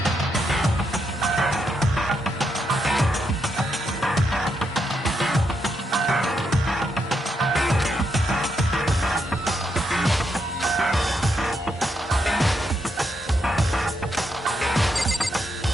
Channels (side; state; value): both; normal; correlation 0.80